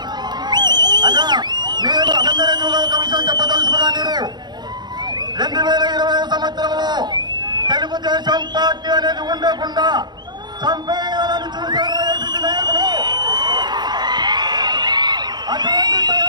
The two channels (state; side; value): late; left; 0.21 ms